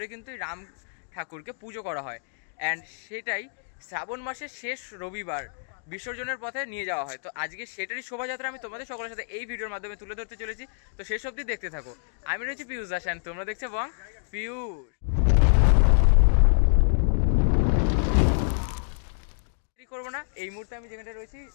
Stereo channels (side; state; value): right; silent; digital silence